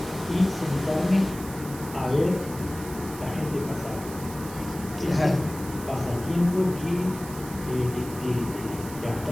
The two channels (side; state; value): right; noise; hiss, 15 dB below the sound